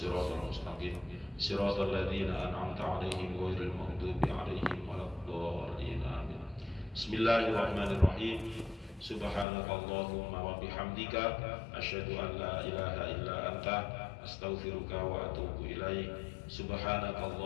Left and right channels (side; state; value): right; drops out; at 9.5 s